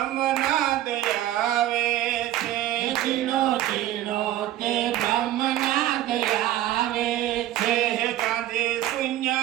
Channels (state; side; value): quieter; left; 13.7 dB